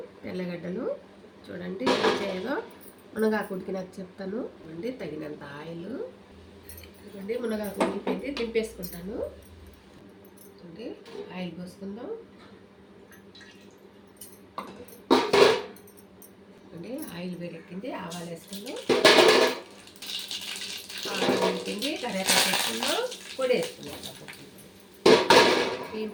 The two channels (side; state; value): both; identical; correlation 1.00